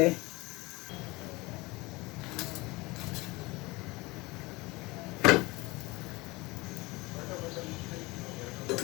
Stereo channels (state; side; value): quieter; right; 23.0 dB